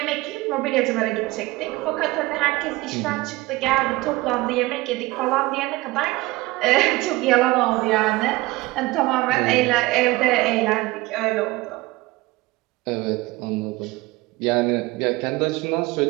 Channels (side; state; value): left; quieter; 20.2 dB